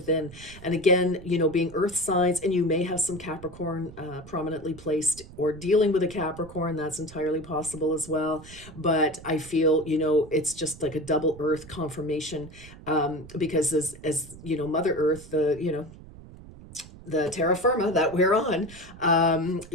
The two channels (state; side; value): noise; right; rumble, 18 dB below the sound